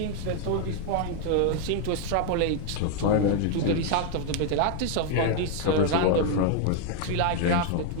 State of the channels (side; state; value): both; different; correlation 0.01